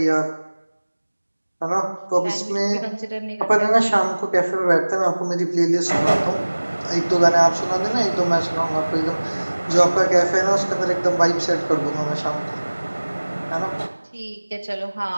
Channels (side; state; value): both; inverted; correlation -1.00